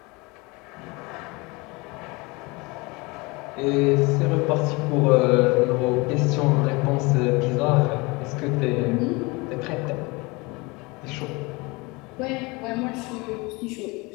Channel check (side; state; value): right; quieter; 25.6 dB